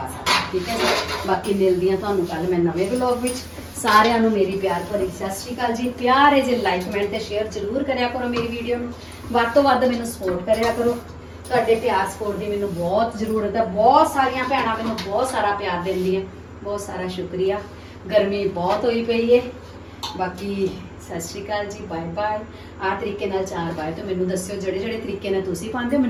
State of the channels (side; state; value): both; identical; correlation 1.00